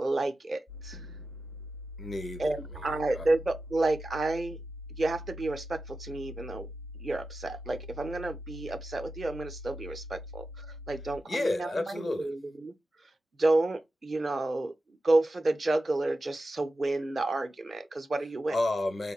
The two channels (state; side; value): normal; both; correlation 0.92